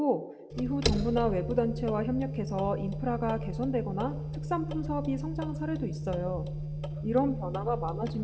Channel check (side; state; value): both; identical; correlation 1.00